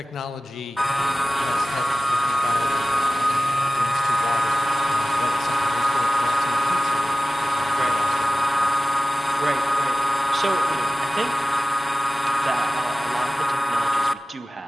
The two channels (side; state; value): both; normal; correlation 0.97